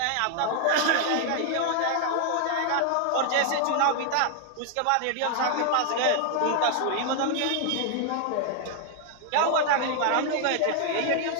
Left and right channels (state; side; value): different; both; correlation 0.00